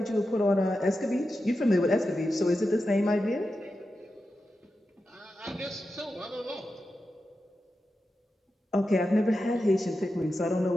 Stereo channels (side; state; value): both; normal; correlation 0.90